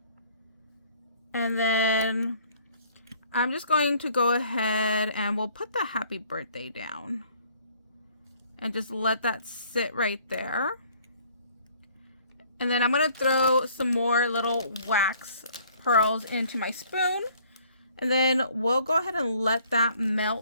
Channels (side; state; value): both; inverted; correlation -0.59